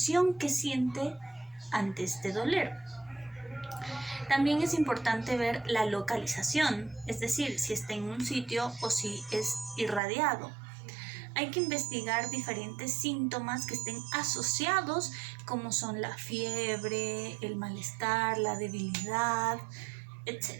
que siente ante este doler. También es importante ver la localización, es decir, si está en un sitio o si es irradiado. Hay que investigar diferentes síntomas que estén asociados, como son la fiebre, el malestar, la debilidad,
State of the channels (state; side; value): drops out; left; at 10.0 s